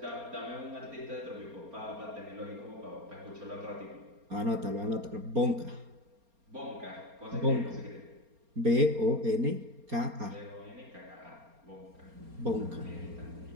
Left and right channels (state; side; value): late; left; 4.3 ms